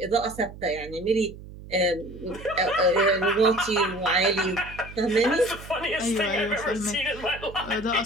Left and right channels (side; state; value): right; noise; hum, 15 dB below the sound